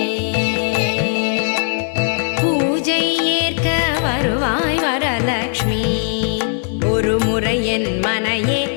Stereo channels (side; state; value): right; silent; digital silence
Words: பூஜை ஏற்க வருவாய் வரலக்ஷ்மி. ஒரு முறை என் மனையே